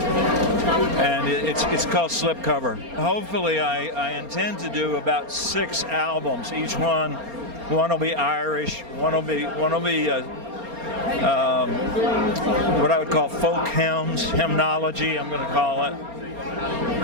and it's called Slipcover. Hopefully I intend to do about 6 albums. Each one will be Irish, one will be what I would call folk hymns, hymnology, I'm going to call it.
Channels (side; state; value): left; late; 4.3 ms